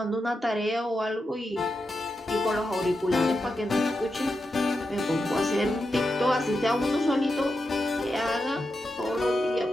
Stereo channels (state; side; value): normal; both; correlation 0.88